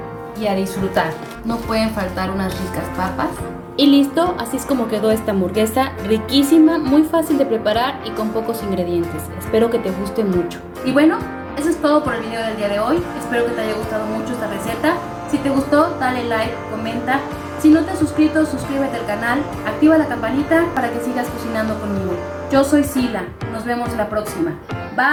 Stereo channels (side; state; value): both; identical; correlation 1.00